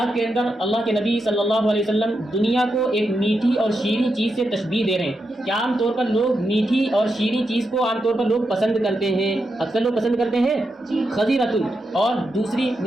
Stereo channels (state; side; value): normal; both; correlation 0.86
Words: کے اندر اللہ کے نبی صلی اللہ علیہ وسلم دنیا کو ایک میٹھی اور شیریں چیز سے تشبیہ دے رہے ہیں کہ عام طور پر لوگ میٹھی اور شیریں چیز کو عام طور پر لوگ پسند کرتے ہیں، اکثر لوگ پسند کرتے ہیں خضرۃ، اور دوسری